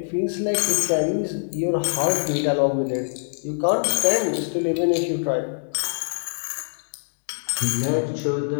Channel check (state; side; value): silent; right; digital silence